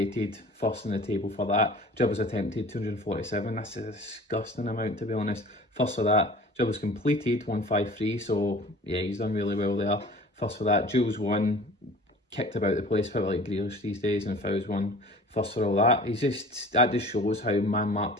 first in the table for that. Dribbles attempted, 247. That's a disgusting amount, to be honest. First for that. Dribbles completed, 153. So yeah, he's done really well there. First for that. Duels won, kicked about the place, felt like Grealish these days, and fouls won. First for all that. That just shows how man-marked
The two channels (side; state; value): both; normal; correlation 0.44